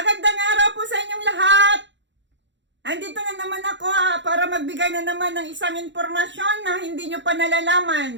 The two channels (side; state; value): left; late; 0.53 ms